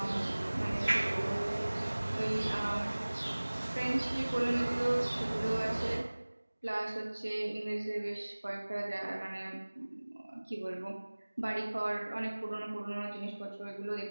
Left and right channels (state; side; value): inverted; both; correlation -1.00